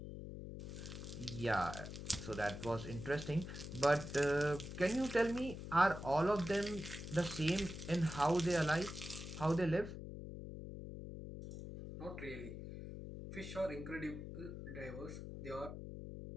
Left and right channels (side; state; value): left; noise; hum, 9 dB below the sound